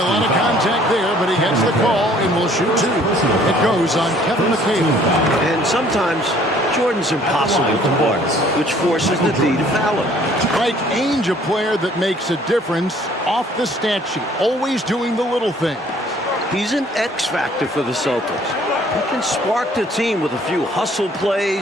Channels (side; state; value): both; normal; correlation 0.58